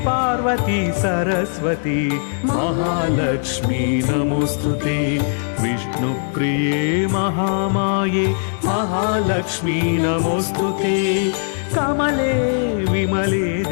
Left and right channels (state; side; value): silent; right; digital silence